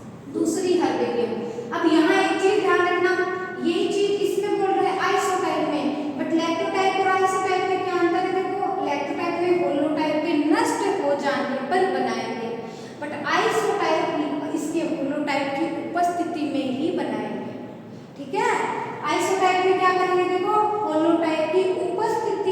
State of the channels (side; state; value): both; identical; correlation 1.00